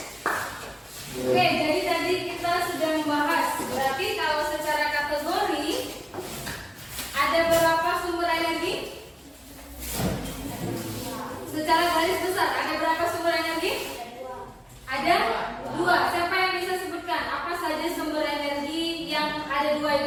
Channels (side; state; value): both; identical; correlation 1.00